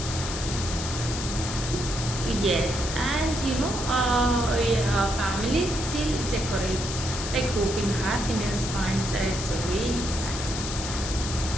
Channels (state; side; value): noise; left; hiss, 6 dB below the sound